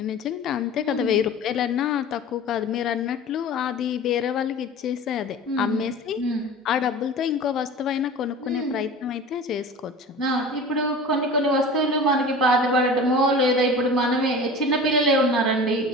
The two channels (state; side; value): normal; both; correlation 0.37